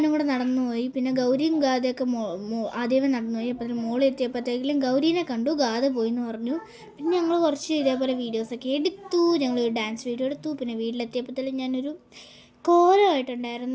കൂടെ നടന്നുപോയി. പിന്നെ ഗൗരിയും ഗാഥയൊക്കെ ആദ്യമേ നടന്നുപോയി. അപ്പോൾ മോളിൽ എത്തിയപ്പോഴത്തേക്കും ഗൗരീനെ കണ്ടു, ഗാഥ പോയി എന്ന് പറഞ്ഞു. പിന്നെ ഞങ്ങൾ കുറച്ച് ഇതേപോലെ വീഡിയോസൊക്കെ എടുത്തു. ഞങ്ങൾ ഡാൻസ് വീഡിയോ എടുത്തു. പിന്നെ വീട്ടിലെത്തിയപ്പോഴത്തേക്കും ഞാനൊരു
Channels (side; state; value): both; identical; correlation 1.00